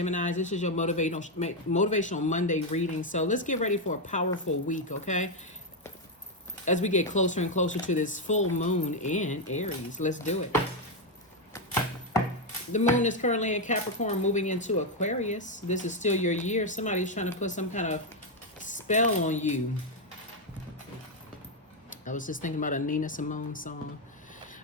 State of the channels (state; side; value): normal; both; correlation 0.03